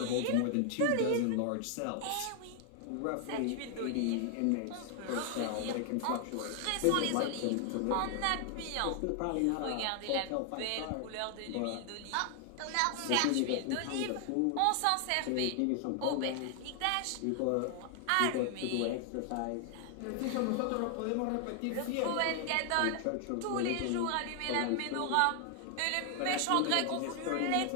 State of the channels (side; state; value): both; different; correlation 0.00